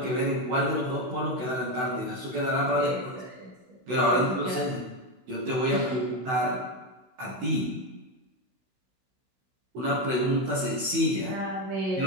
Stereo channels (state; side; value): late; left; 16 ms